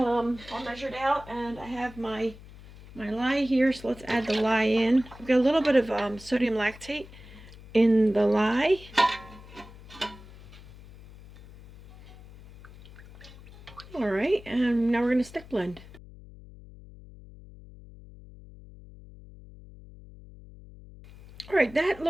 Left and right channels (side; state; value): left; noise; hum, 19 dB below the sound